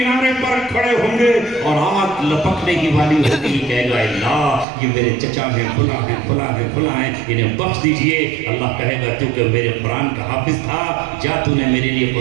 پر کھڑے ہوں گے اور آگ لپکنے ہی والی ہوگی. کہے گا اللہ یہ میرے چچا ہیں فلاں ہیں فلاں ہیں فلاں ہیں انہیں بخش دیجئے. اللہ کہے گا تو کہ میرے قرآن کا حافظ تھا جا تو نے میرے لیے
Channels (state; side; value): drops out; left; at 4.7 s